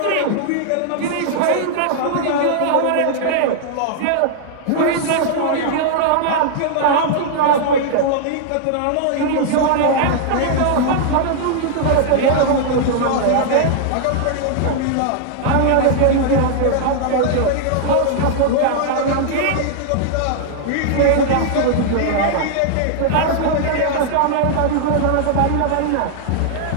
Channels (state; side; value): different; both; correlation -0.01